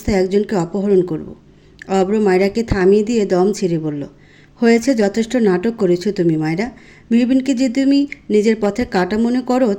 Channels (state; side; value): identical; both; correlation 1.00